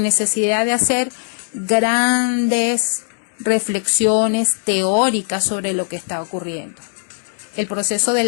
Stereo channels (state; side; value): silent; right; 66 dB below the other